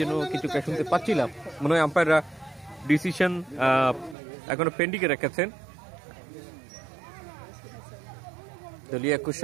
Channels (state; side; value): drops out; left; at 4.2 s